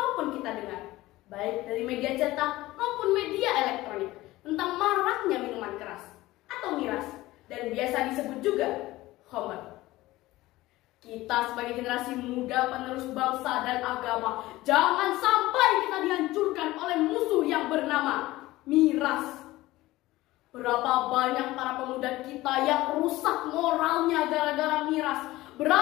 kita dengar, baik dari media cetak maupun media elektronik, tentang maraknya minuman keras atau miras, dan biasa disebut juga khamr. Kita sebagai generasi muda penerus bangsa dan agama, jangan sampai kita dihancurkan oleh musuh yang bernama miras. Berapa banyak para pemuda kita yang rusak moralnya gara-gara miras.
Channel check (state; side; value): quieter; right; 17.9 dB